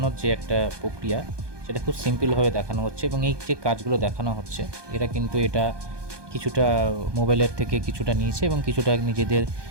যে একটা প্রক্রিয়া, সেটা খুব সিম্পলভাবে দেখানো হচ্ছে। এবং এই যে কাজগুলো দেখানো হচ্ছে, এরা কিন্তু এটা কিছুটা মোবাইলের থেকে কিছুটা নিয়েছে এবং কিছুটা নিজেদের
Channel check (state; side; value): late; left; 1.2 ms